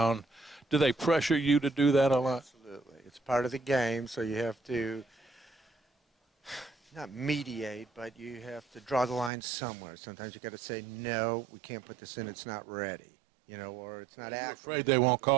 Do they pressure you to do that a lot? Absolutely. It's part of the game, so you have to not mediate, but you have to draw the line somewhere. Sometimes you got to say, no, we can't put this in, it's not ready, you know, or it's not Are you accurate. afraid they won't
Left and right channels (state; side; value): drops out; left; at 9.3 s